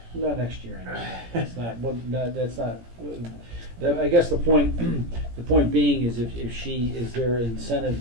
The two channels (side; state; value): left; late; 17 ms